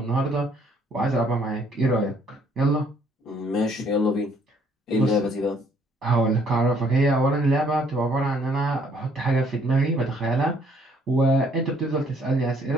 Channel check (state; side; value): normal; both; correlation 0.64